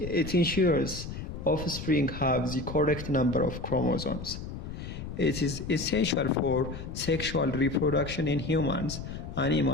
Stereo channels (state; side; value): noise; left; rumble, 8 dB below the sound